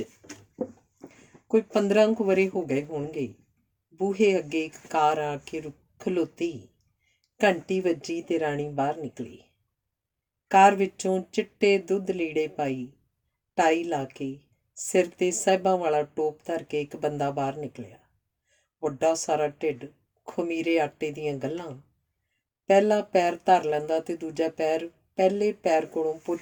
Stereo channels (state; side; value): identical; both; correlation 1.00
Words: ਕੋਈ 15 ਕੁ ਵਰ੍ਹੇ ਹੋ ਗਏ ਹੋਣਗੇ। ਬੂਹੇ ਅੱਗੇ ਇੱਕ ਕਾਰ ਆ ਕੇ ਖਲੋਤੀ। ਘੰਟੀ ਵੱਜੀ ਤੇ ਰਾਣੀ ਬਾਹਰ ਨਿਕਲੀ। ਕਾਰ ਵਿੱਚੋਂ ਚਿੱਟੇ ਦੁੱਧ ਲੀੜੇ ਪਾਈ, ਟਾਈ ਲਾ ਕੇ, ਸਿਰ 'ਤੇ ਸਾਹਿਬਾਂ ਵਾਲਾ ਟੋਪ ਧਰ ਕੇ ਇੱਕ ਬੰਦਾ ਬਾਹਰ ਨਿਕਲਿਆ। ਵੱਡਾ ਸਾਰਾ ਢਿੱਡ, ਖਮੀਰੇ ਆਟੇ ਦੀਆਂ ਗੱਲਾਂ। ਪਹਿਲਾ ਪੈਰ ਧਰ ਲੈਂਦਾ ਤੇ ਦੂਜਾ ਪੈਰ ਪਹਿਲੇ ਪੈਰ ਕੋਲੋਂ